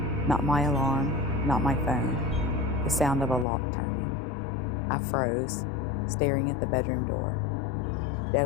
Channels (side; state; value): right; drops out; at 3.5 s